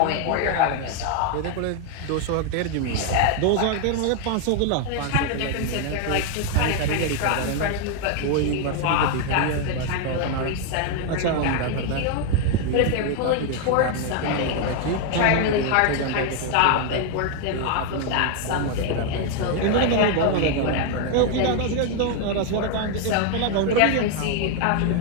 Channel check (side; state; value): both; different; correlation 0.01